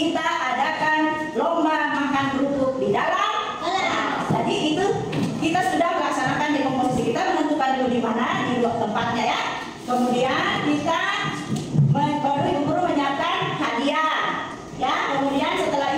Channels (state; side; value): identical; both; correlation 1.00